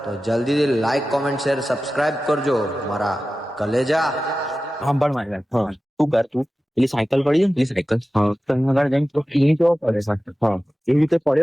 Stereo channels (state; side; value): normal; both; correlation 0.95